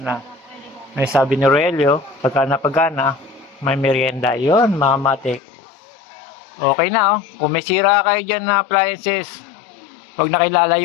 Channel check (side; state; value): right; drops out; at 5.4 s